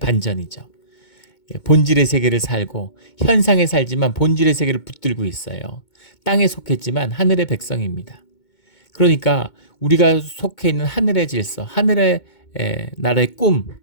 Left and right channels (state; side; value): late; right; 2.2 ms